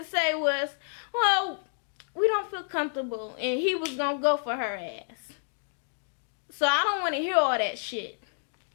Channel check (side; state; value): right; silent; digital silence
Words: to say was, well, we don't feel comfortable. And he was going to go for her ass. So I don't want to hear all that shit.